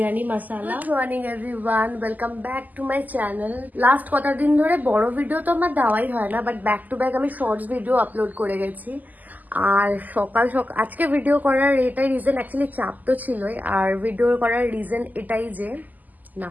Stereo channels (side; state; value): left; late; 0.082 ms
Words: masala. Good morning everyone, welcome back to my channel. Last কটা দিন ধরে বড় ভিডিও তো আমার দেওয়াই হয় না, বাট ব্যাক টু ব্যাক আমি শর্টস ভিডিও আপলোড করে গেছি। আর সকাল সকাল আজকে ভিডিও করার এটাই রিজন, অ্যাকচুয়ালি চাপ তো ছিলই। আর ভিডিও করার রিজন এটাই যে না,